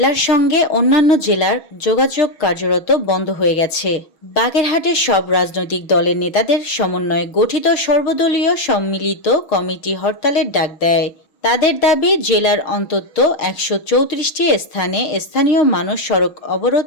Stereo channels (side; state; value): right; late; 6.3 ms